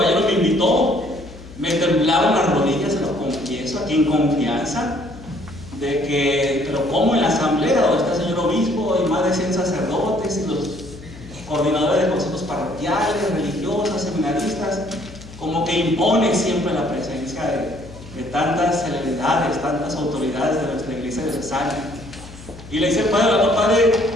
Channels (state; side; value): noise; left; hum, 17 dB below the sound